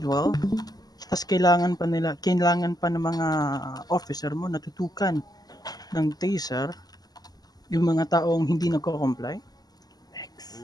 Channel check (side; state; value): right; late; 0.19 ms